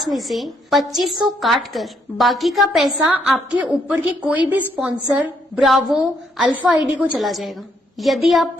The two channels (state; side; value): normal; both; correlation 0.72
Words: में से 2500 काट कर बाकी का पैसा आपके ऊपर के कोई भी स्पॉन्सर, ब्रावो, अल्फा आईडी को चला जाएगा। यदि आप